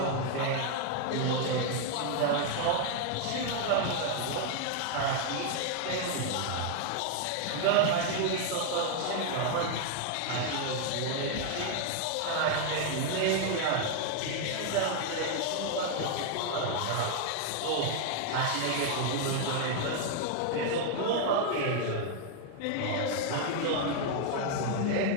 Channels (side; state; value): both; different; correlation 0.00